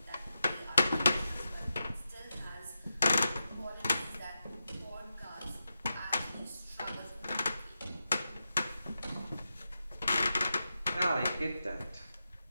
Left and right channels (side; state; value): both; inverted; correlation -0.89